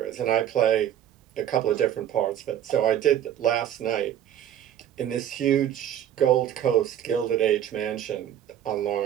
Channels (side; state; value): left; quieter; 10.6 dB